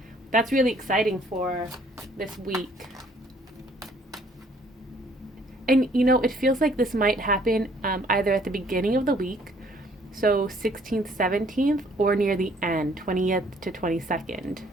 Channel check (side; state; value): both; normal; correlation 0.61